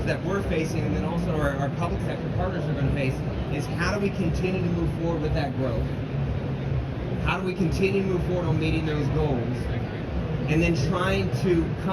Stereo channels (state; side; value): identical; both; correlation 1.00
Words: that we're facing, and then also our public sector partners are going to face, is how do we continue to move forward with that growth? How do we continue to move forward on meeting those goals? And then trying to